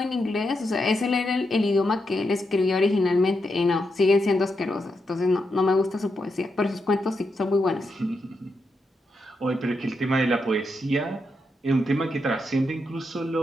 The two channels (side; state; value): both; normal; correlation 0.84